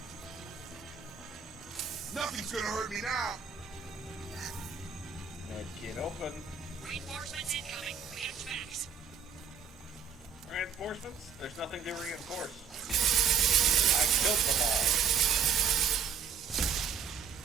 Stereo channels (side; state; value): left; quieter; 6.7 dB